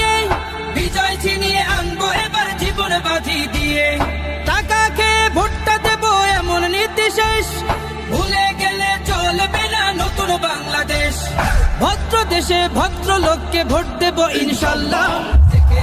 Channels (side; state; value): both; identical; correlation 1.00